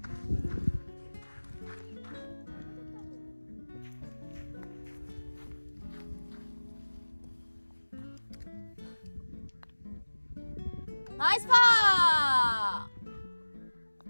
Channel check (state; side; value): inverted; both; correlation -1.00